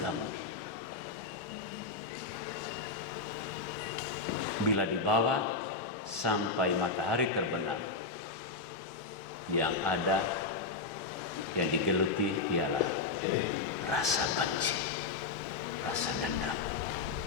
bila dibawa sampai matahari terbenam, yang ada, yang digeluti ialah rasa benci, rasa dendam.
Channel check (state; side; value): quieter; right; 4.1 dB